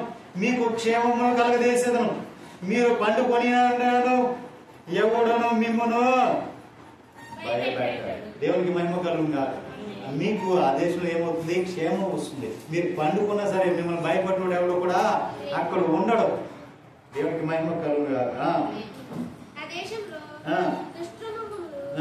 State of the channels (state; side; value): identical; both; correlation 1.00